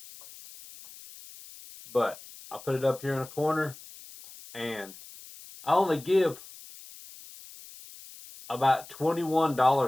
But I put it up here in a corner, and I only give about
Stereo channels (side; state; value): left; noise; hiss, 18 dB below the sound